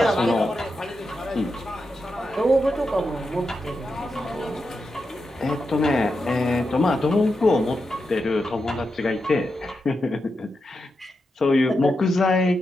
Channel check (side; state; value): both; normal; correlation 0.87